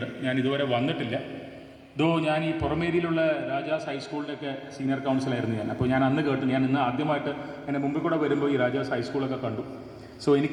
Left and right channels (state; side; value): identical; both; correlation 1.00